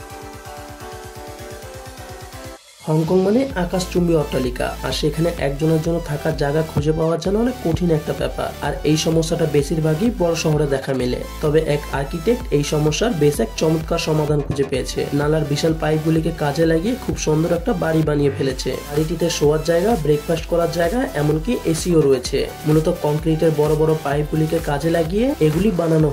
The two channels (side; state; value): both; identical; correlation 1.00